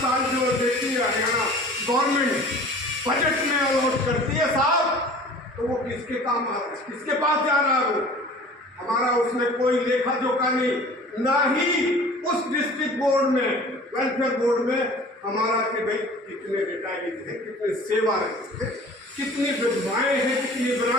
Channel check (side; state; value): both; normal; correlation 0.45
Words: जो देती है हरियाणा गवर्नमेंट बजट में अलॉट करती है साहब, तो वो किसके काम, किसके पास जा रहा है? वो हमारा उसमें कोई लेखा जोखा नहीं, ना ही उस डिस्ट्रिक्ट बोर्ड में, वेलफेयर बोर्ड में हमारा कि भाई कितने रिटायरीज हैं, कितने सेवारत हैं, कितनी विधवाएं हैं, कितनी